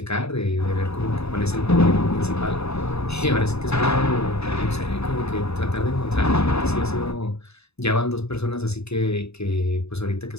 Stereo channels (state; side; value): late; right; 0.79 ms